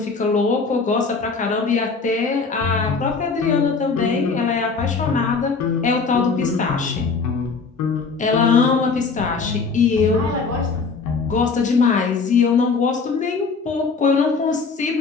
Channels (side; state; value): right; quieter; 4.7 dB